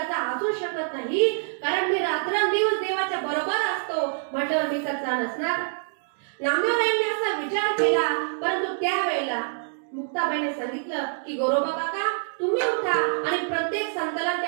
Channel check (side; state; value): left; silent; digital silence